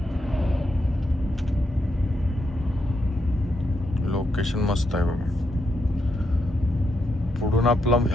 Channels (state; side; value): normal; both; correlation 0.81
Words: लोकेशन मस्त आहे बघा. पुढून आपला